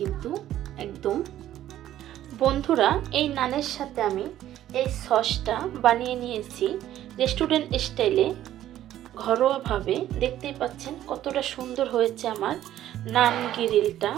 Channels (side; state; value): left; quieter; 12.6 dB